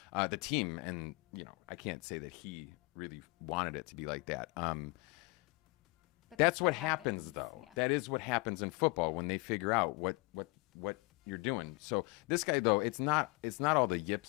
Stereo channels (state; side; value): quieter; right; 26.2 dB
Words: team. And, I can't say that he really wanted it to be like that. But that's what happens though. Yeah. That is what happens in football when they figure out what you're doing. So this guy though, it's not all the